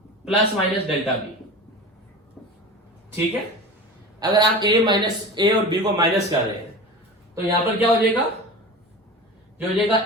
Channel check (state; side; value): normal; both; correlation 0.32